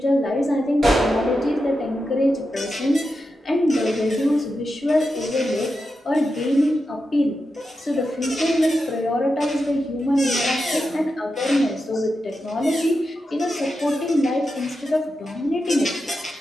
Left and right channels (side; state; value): both; normal; correlation 0.89